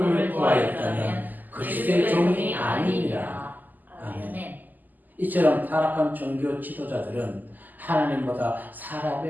구하였다면 그리스도의 종이 아니니라. 아멘. 이처럼 타락한 종교 지도자들은 하나님보다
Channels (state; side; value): late; left; 0.085 ms